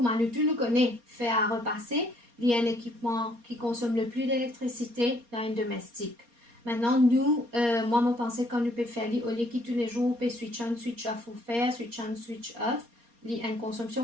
nous tous nous connaissons, faire à repasser, il y a un équipement qui consomme le plus d'électricité dans un domestique. Maintenant, nous, moi, je pense qu'on peut faire, au lieu que tous les jours, on peut switch on, switch off, ou faire, switch on, switch off. Il y a une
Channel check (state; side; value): late; left; 4.3 ms